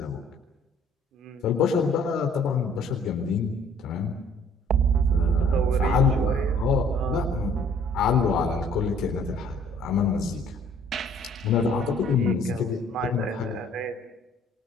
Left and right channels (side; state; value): both; normal; correlation 0.57